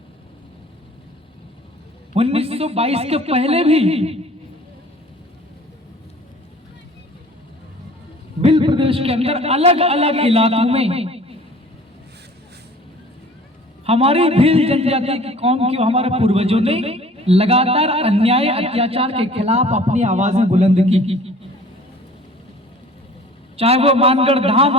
1922 के पहले भी भिल प्रदेश के अंदर अलग अलग इलाकों में हमारी भील जनजाति की कौम की हमारे पूर्वजों ने लगातार अन्याय अत्याचार के खिलाफ अपनी आवाजें बुलंद की। चाहे वो मानगढ़ धाम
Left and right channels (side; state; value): both; normal; correlation 0.48